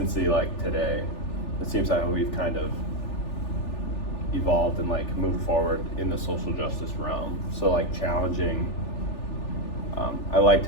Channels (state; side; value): late; right; 3.4 ms